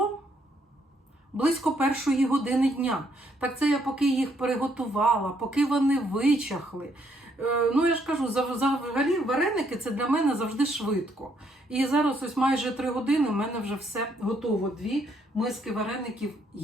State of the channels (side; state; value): both; normal; correlation 0.71